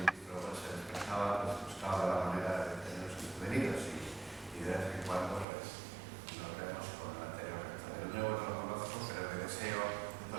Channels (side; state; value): left; drops out; at 5.5 s